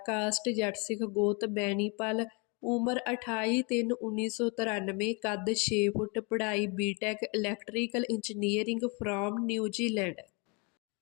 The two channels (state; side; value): quieter; right; 31.7 dB